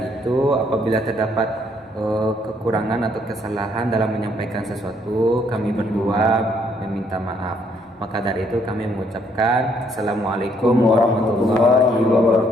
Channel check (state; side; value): normal; both; correlation 0.68